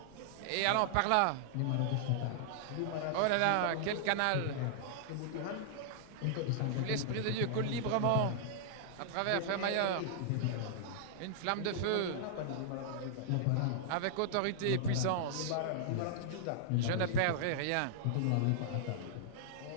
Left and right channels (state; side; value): different; both; correlation -0.01